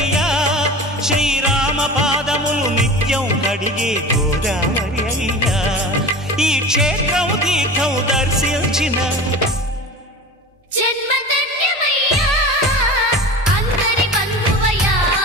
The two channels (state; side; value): normal; both; correlation 0.34